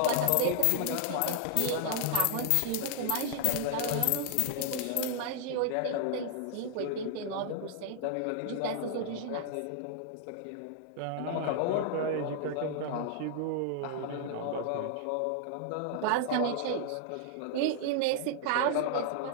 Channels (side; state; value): both; different; correlation -0.01